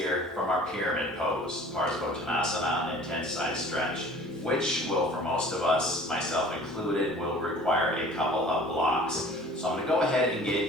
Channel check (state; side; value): normal; both; correlation 0.47